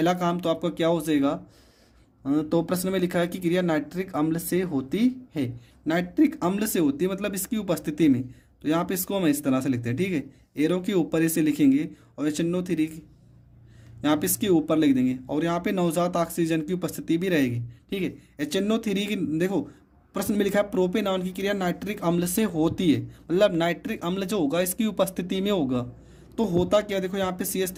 काम तो आपका क्या हो जाएगा? तो प्रश्न में लिखा है कि क्रिया नाइट्रिक अम्ल से होती है। नाइट्रिक अम्ल से होती है मतलब इसकी उपस्थिति में। तो यहाँ पे इसको हम इस तरह से लिखते हैं, ठीक है। एरो के ऊपर इसे लिखेंगे और HNO3 यहाँ पे इसके ऊपर लिख देंगे, और यहाँ पे नवजात ऑक्सीजन की उपस्थिति भी रहेगी, ठीक है। HNO3 की देखो प्रश्न में लिखा है प्रोपेनॉन की क्रिया नाइट्रिक अम्ल से होती है, मतलब नाइट्रिक अम्ल जो होगा इसकी उपस्थिति में होगा। तो होता क्या? देखो यहाँ पे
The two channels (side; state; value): both; identical; correlation 1.00